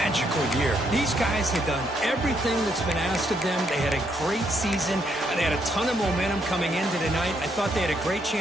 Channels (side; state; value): both; normal; correlation 0.74